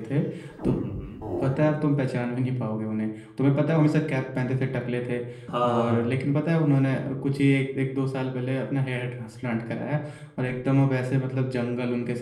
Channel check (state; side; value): identical; both; correlation 1.00